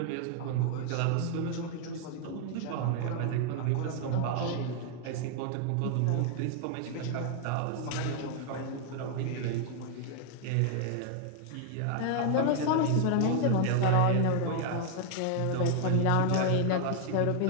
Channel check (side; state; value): both; different; correlation 0.00